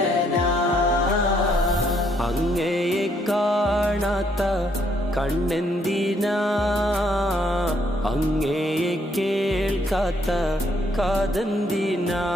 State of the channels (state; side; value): normal; both; correlation 0.70